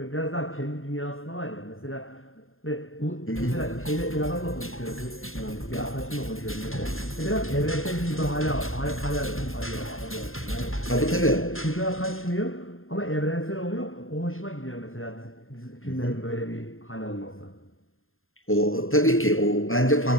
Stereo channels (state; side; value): late; right; 0.60 ms